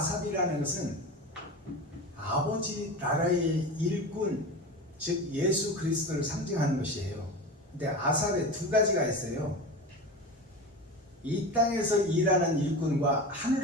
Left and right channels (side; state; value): both; normal; correlation 0.28